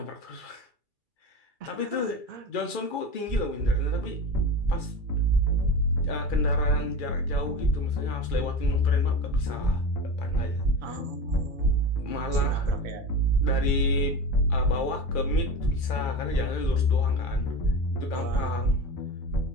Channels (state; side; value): late; right; 2.3 ms